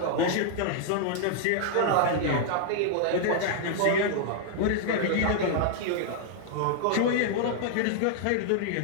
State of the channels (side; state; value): both; different; correlation -0.01